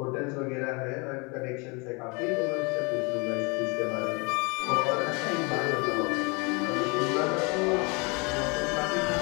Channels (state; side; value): quieter; right; 29.9 dB